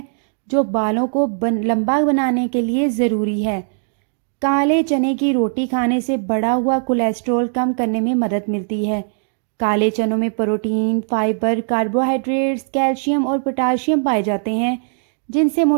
जो बालों को लंबा बनाने के लिए ज़रूरी है। काले चने की रोटी खाने से बढ़ा हुआ कोलेस्ट्रॉल कम करने में मदद मिलती है। काले चनों में प्रोटीन, फाइबर, कार्बोहाइड्रेट्स, कैल्शियम और पोटाशियम पाए जाते हैं जिनसे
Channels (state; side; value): silent; left; digital silence